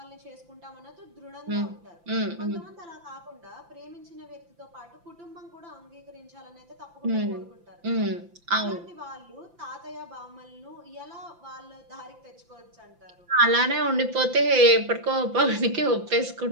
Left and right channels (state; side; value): late; left; 5.8 ms